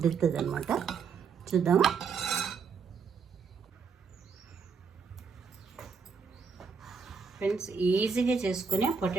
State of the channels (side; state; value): left; quieter; 5.7 dB